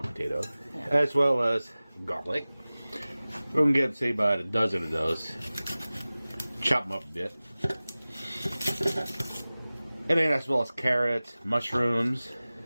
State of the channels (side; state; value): both; inverted; correlation -0.98